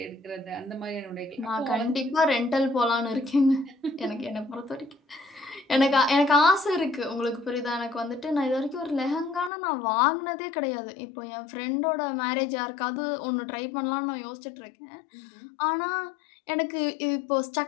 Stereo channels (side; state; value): right; drops out; at 9.5 s